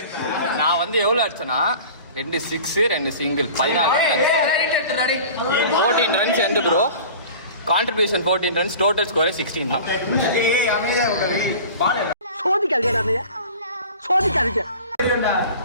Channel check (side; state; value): both; inverted; correlation -0.40